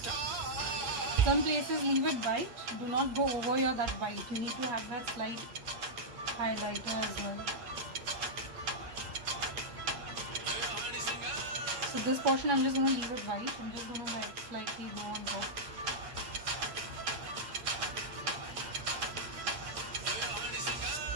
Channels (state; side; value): late; left; 8.5 ms